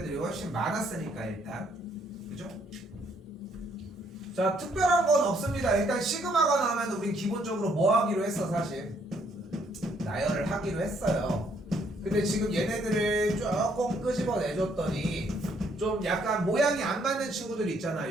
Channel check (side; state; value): both; normal; correlation 0.68